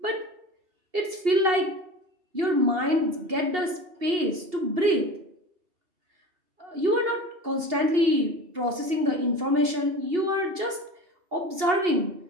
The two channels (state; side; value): late; left; 2.8 ms